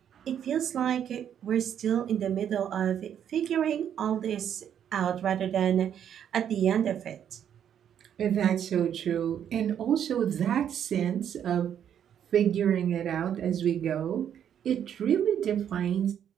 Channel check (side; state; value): left; quieter; 9.3 dB